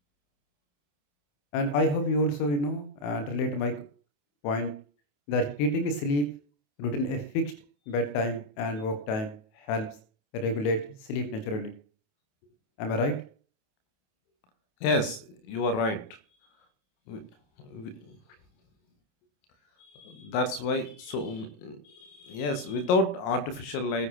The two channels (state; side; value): late; right; 28 ms